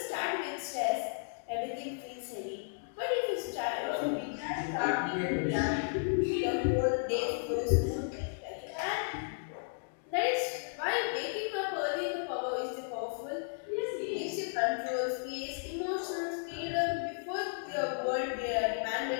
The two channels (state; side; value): silent; right; digital silence